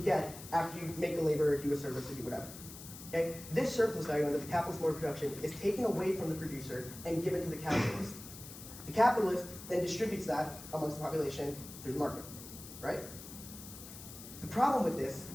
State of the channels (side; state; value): left; noise; hiss, 14 dB below the sound